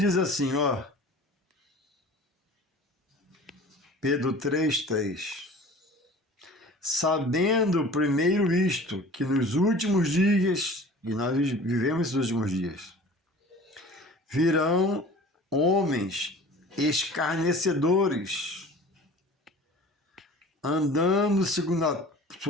assim, ó, Pedro 3:3, sabendo primeiro isto, que nos últimos dias, e nós vivemos esses últimos dias, virão homens escarnecedores, andando segundo as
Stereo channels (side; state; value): both; normal; correlation 0.43